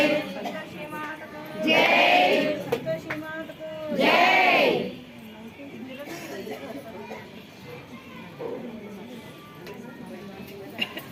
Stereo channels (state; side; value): identical; both; correlation 1.00